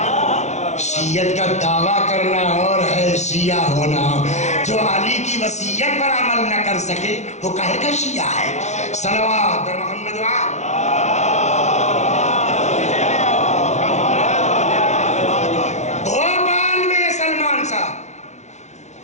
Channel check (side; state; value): right; late; 0.33 ms